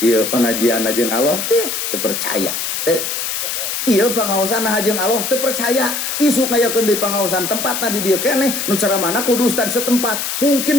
ieu pengajianna jeung Allah teu percaya teu ieu pangaosan jeung Allah teu percaya isuk ngayakeun deui pangaosan tempatna di dieu keneh nu ceramahna kudu ustad setempat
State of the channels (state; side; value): noise; left; hiss, 2 dB below the sound